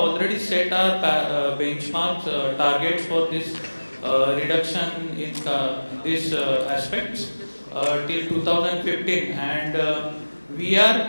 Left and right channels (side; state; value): both; inverted; correlation -1.00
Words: set our benchmarks, targets for this reduction in these aspects till 2015, and we